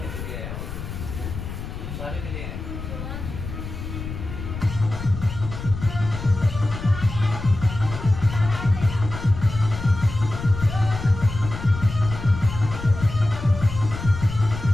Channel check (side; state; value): left; noise; rumble, 8 dB below the sound